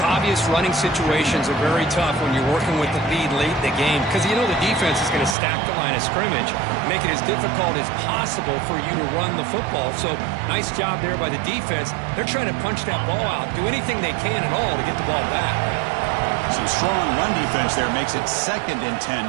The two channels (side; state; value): left; drops out; at 5.4 s